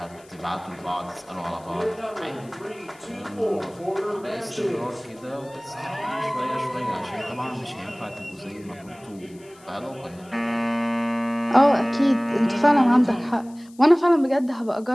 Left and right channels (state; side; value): noise; left; hiss, 27 dB below the sound